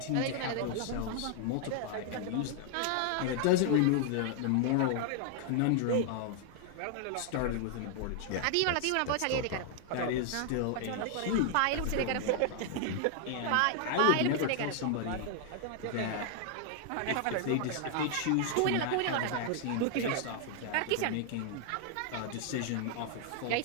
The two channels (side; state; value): both; different; correlation 0.00